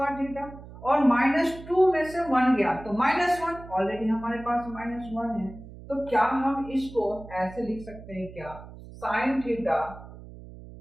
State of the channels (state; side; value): noise; right; hum, 16 dB below the sound